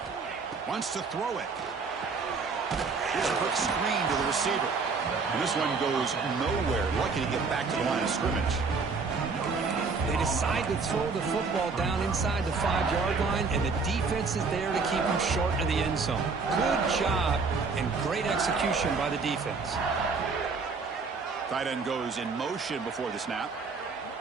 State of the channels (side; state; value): left; quieter; 4.6 dB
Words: Wants to throw it. Here's a quick screen to the receiver. And this one goes nowhere. Lucky to get back to the line of scrimmage. They decide to throw the football down inside the 5-yard line, and the defense is there to keep them short of the end zone. Good job and great execution by the defense. Tight end goes in motion before the snap.